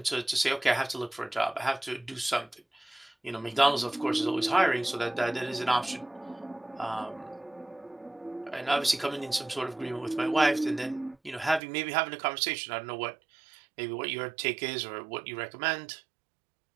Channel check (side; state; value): left; drops out; at 11.6 s